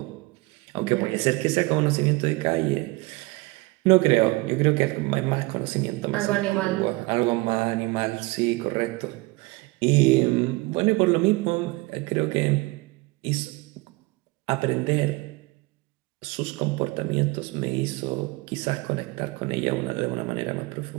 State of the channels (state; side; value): quieter; left; 23.9 dB